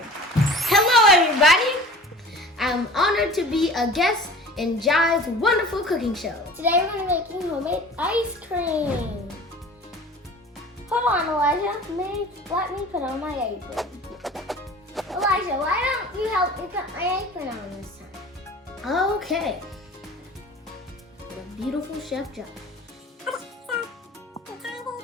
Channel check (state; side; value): normal; both; correlation 0.42